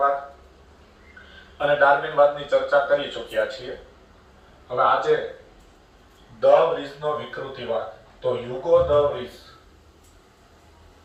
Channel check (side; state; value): both; identical; correlation 1.00